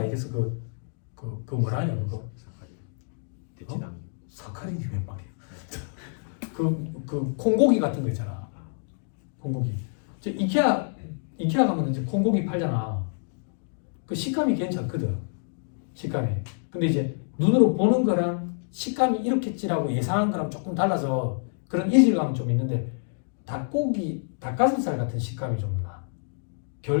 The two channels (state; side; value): silent; right; digital silence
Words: 그 뭐라 하냐 그거? 대체당. 사카린이 웬 말이야? 그 콩고기 같은 거 있잖아. 콩고기. 저 이케아 가면 이제 콩고기 팔잖아. 그 식감이 괜찮거든. 식감이. 근데 이제 눈으로 보는 거랑 식감이 이렇겠지라고 예상한 거랑 조금 달라서 그런 이질감은 좀 있는데 닭가슴살 같은 식감이 좀 나.